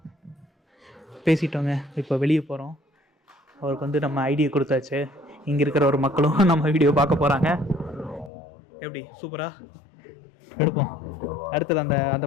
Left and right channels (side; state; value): right; drops out; at 8.3 s